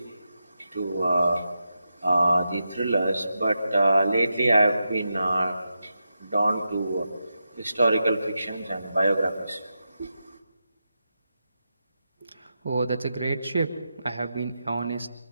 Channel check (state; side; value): inverted; both; correlation -0.88